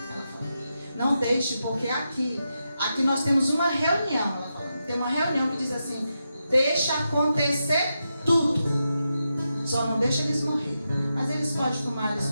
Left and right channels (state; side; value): inverted; both; correlation -0.87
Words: falou, não deixe, porque aqui nós temos uma reunião, ela falou, tem uma reunião que diz assim, deixa acontecer tudo. Só não deixa eles morrerem. Mas eles podem fumar, eles